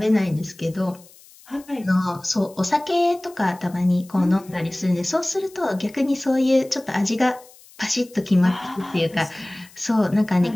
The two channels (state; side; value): noise; left; hiss, 24 dB below the sound